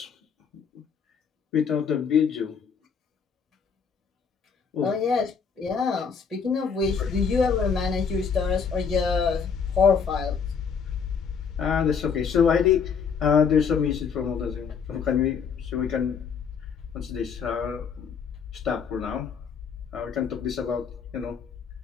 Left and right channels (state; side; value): quieter; right; 6.3 dB